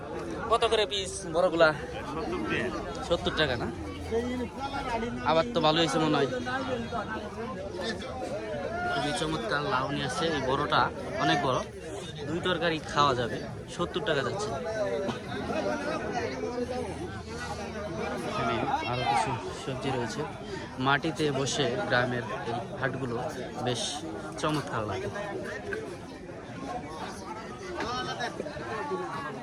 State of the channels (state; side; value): identical; both; correlation 1.00